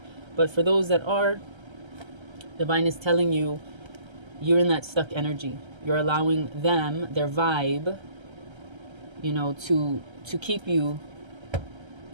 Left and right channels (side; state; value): left; late; 1.3 ms